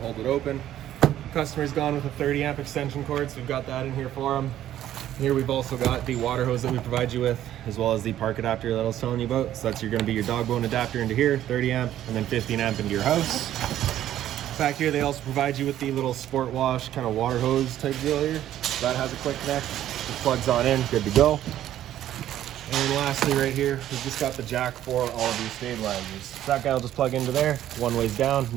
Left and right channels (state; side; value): quieter; left; 12.2 dB